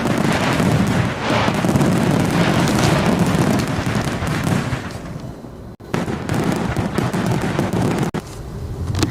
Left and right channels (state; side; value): identical; both; correlation 1.00